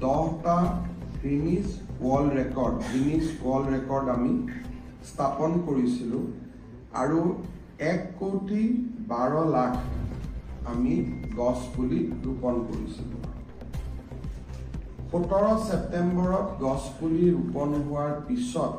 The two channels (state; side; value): identical; both; correlation 1.00